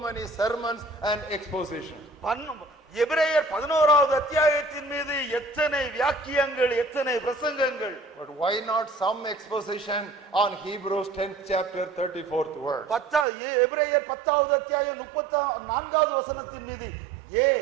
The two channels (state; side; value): drops out; left; at 13.2 s